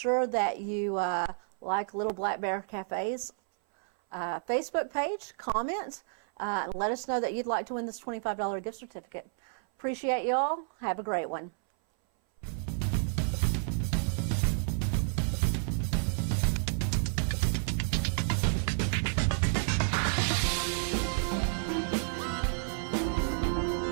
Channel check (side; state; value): left; silent; 57 dB below the other